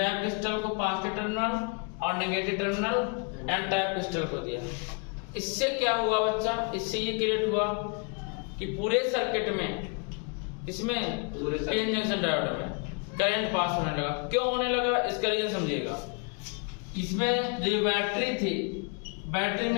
क्रिस्टल को पॉजिटिव टर्मिनल और negative terminal N type crystal को दिया। इससे क्या हुआ बच्चा? इससे ये क्रिएट हुआ कि पूरे सर्किट में, इसमें पीएन जंक्शन डायोड में करंट पास होने लगा। क्यों होने लगा इसका रीजन समझिएगा। इसमें जो बैटरी थी, बैटरी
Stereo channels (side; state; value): right; quieter; 36.0 dB